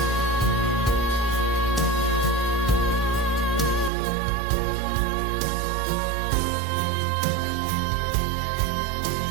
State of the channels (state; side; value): drops out; left; at 3.9 s